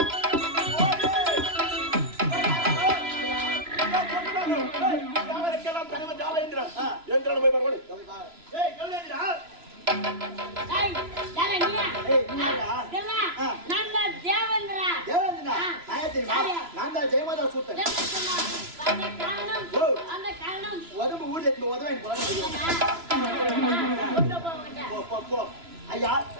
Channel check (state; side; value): late; left; 3.0 ms